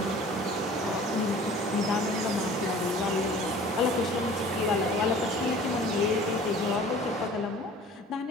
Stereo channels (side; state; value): both; normal; correlation 0.47